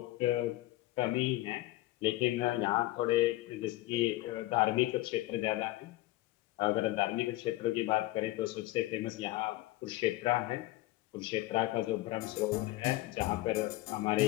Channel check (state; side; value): quieter; right; 18.0 dB